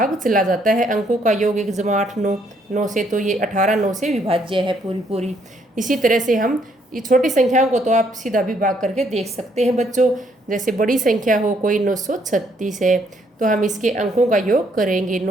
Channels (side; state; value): both; normal; correlation 0.69